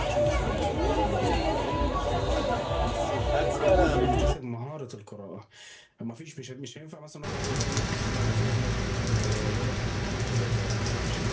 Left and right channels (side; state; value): both; identical; correlation 1.00